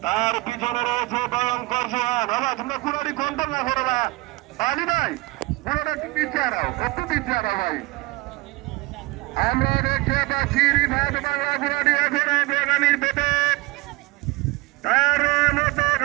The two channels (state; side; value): quieter; left; 21.3 dB